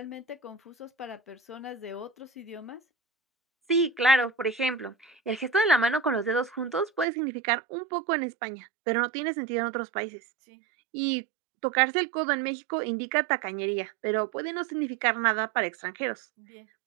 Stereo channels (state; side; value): drops out; left; at 7.1 s